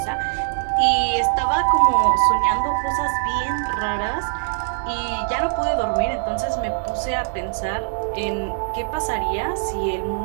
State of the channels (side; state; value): left; silent; digital silence